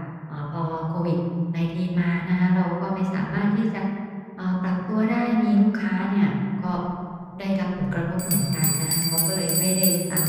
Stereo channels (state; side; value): identical; both; correlation 1.00